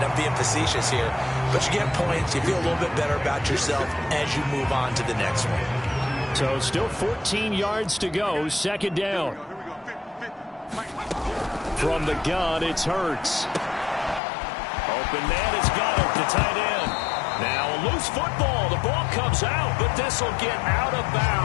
I'm being facetious here, but you get points, you feel a little bit better about yourself as you move on to the next one. So still 14 yards to go, 2nd down. From the gun, it's Hurts. Open man has got it, the tight end. Now a loose football. The ball comes out, but this will get out of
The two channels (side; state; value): right; drops out; at 14.2 s